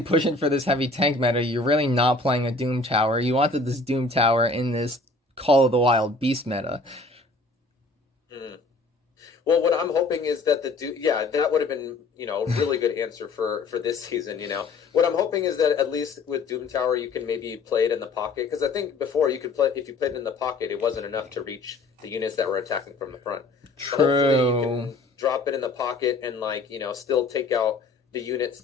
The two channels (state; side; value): quieter; right; 3.4 dB